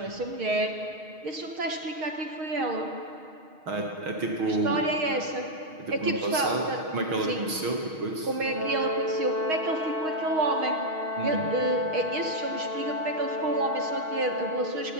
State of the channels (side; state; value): left; late; 6.4 ms